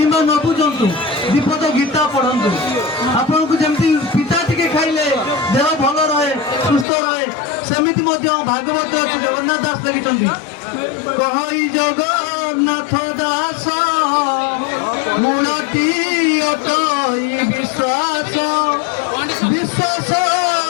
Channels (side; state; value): right; drops out; at 6.9 s